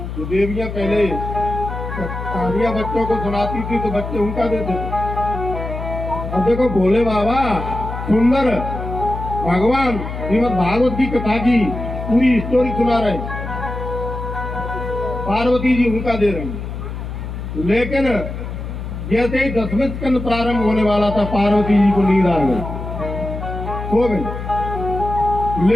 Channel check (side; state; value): left; noise; hum, 7 dB below the sound